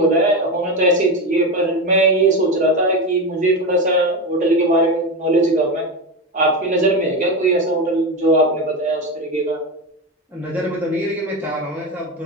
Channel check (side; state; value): both; normal; correlation 0.18